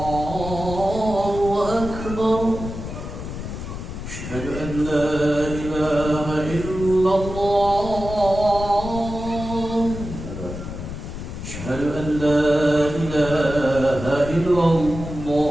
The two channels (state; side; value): noise; left; rumble, 8 dB below the sound